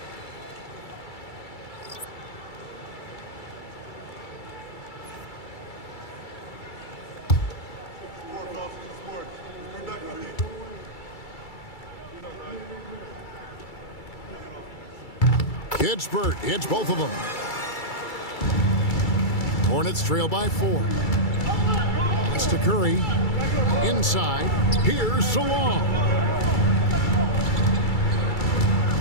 Kispert hits both of them. Hornets trail by 4. Pass to Curry. Inside. Here's Salon.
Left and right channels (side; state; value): right; late; 2.3 ms